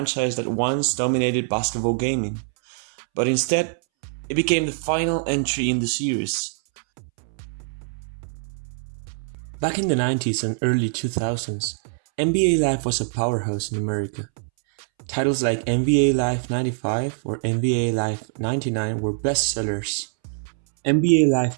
that once dominated basketball gaming, but instead, it became the final entry in the series. Back in the 90s and early 2000s, NBA Live was a powerhouse in America. Titles like NBA Live 95 or NBA Live 99 were bestsellers. NBA Live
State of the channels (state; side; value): silent; left; 63 dB below the other